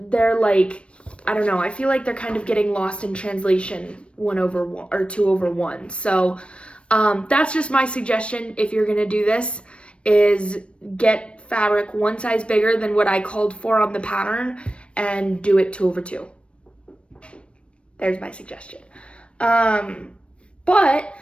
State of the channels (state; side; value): late; right; 0.059 ms